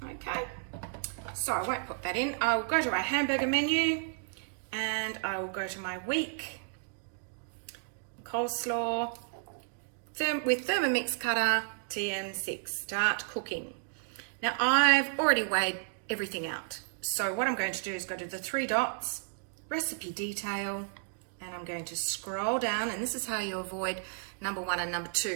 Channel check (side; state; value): left; silent; digital silence